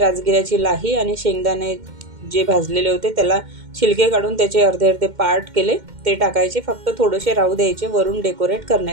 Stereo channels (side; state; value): left; late; 2.1 ms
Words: लाही आणि शेंगदाणे जे भाजलेले होते त्याला छिलके काढून त्याचे अर्धे अर्धे पार्ट केले, ते टाकायचे, फक्त थोडेसे राहू द्यायचे वरून डेकोरेट